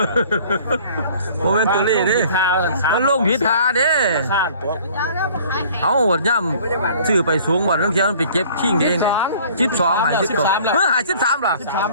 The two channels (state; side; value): inverted; both; correlation -0.51